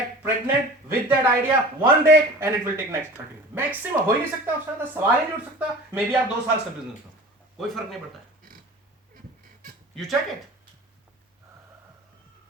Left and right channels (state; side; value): normal; both; correlation 0.40